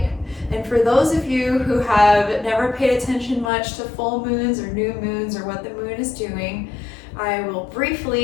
and for those of you who have never paid attention much to full moons or new moons or what the moon is doing, I will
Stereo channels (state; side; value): drops out; right; at 3.5 s